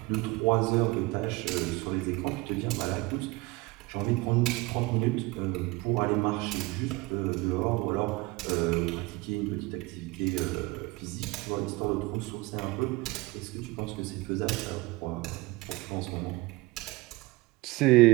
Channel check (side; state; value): left; quieter; 22.7 dB